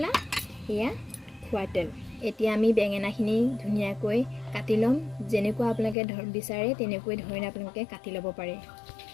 এয়া খোৱা তেল। এতিয়া আমি বেঙেনাখিনি ধুনীয়াকৈ কাটি ল'ম। যেনেকুৱা আপোনালোকে বিচাৰে তেনেকৈ ধৰণে আপোনালোকে কাটি ল'ব পাৰে।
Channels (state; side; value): drops out; right; at 6.0 s